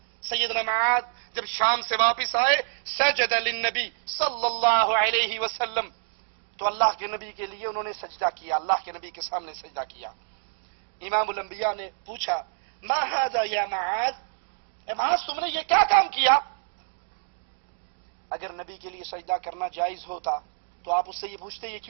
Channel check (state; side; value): silent; left; digital silence